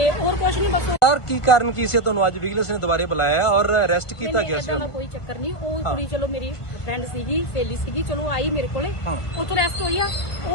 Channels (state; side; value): late; right; 1.5 ms